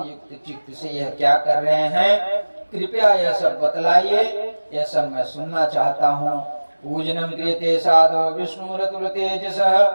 युक्त चित्त से यह क्या कर रहे हैं? कृपया यह सब बतलाइए, यह सब मैं सुनना चाहता हूँ। पूजनम क्रियते साधो विष्णुरतुल तेजसः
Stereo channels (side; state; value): both; inverted; correlation -1.00